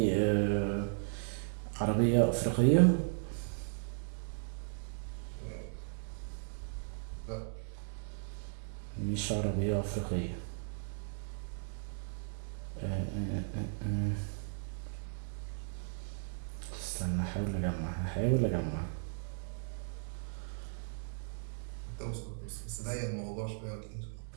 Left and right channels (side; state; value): left; silent; 53 dB below the other